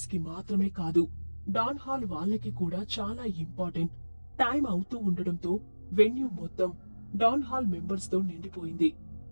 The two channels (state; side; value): inverted; both; correlation -1.00